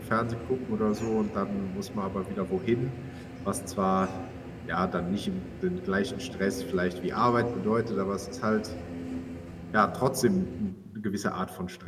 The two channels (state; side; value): identical; both; correlation 1.00